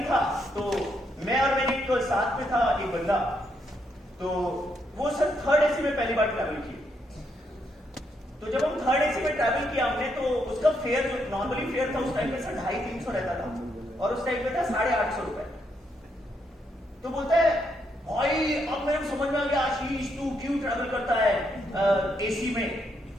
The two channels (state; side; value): normal; both; correlation 0.77